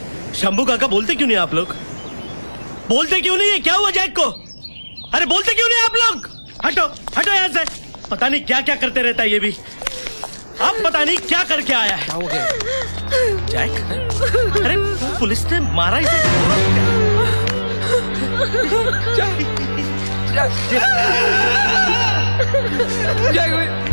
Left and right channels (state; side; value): inverted; both; correlation -1.00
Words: शंभू काका बोलते क्यों नहीं आप लोग? बोलते क्यों नहीं है? क्या हुआ जैक को? अरे बोलते क्यों नहीं आप लोग? हटो हटो यहाँ से। पता नहीं क्या क्या करते रहता है ये भी। अब पता नहीं क्या करके आया है। क्या हो गया जैक? अरे पुलिस ने मारा इसे। जैक